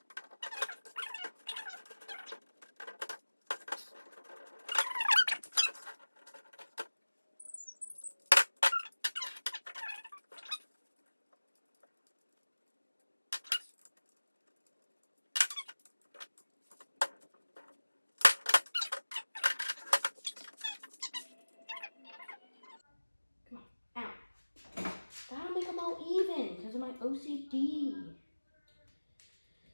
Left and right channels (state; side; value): inverted; both; correlation -1.00